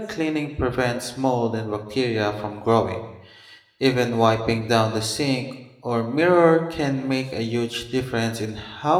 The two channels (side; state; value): both; identical; correlation 1.00